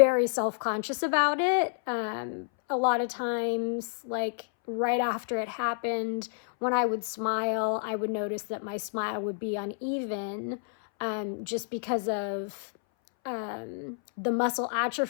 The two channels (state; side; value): silent; right; 58 dB below the other